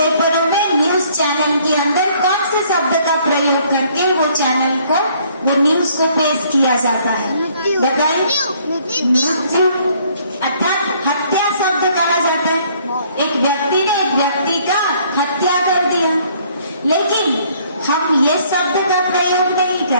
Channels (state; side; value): inverted; both; correlation -0.62